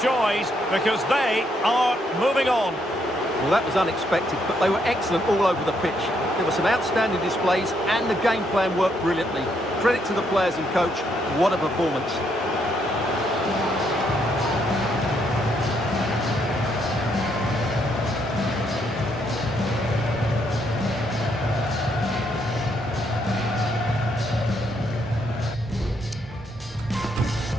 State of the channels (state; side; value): normal; both; correlation 0.74